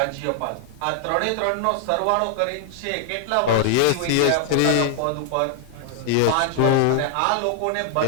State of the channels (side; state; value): both; different; correlation 0.00